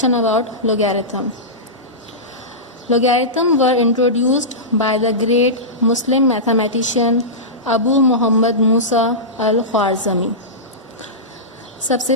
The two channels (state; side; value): normal; both; correlation -0.16